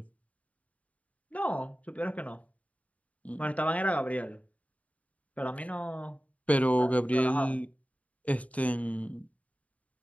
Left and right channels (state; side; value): late; right; 0.068 ms